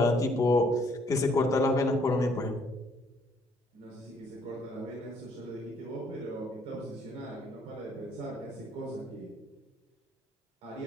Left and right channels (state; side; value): normal; both; correlation 0.66